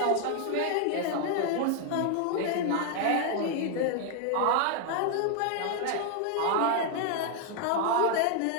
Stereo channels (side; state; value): both; different; correlation 0.00